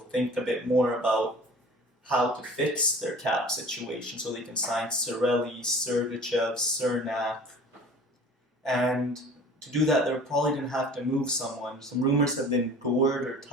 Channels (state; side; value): normal; both; correlation 0.44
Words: think a bit more about how to fix their cap situation so they can sign Cirelli, Sergachev, Cernak. And to do that, they're probably going to have to move someone. Some rumors have been Gord or